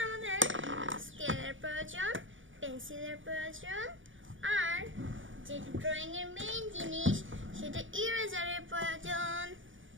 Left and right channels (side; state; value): left; late; 0.57 ms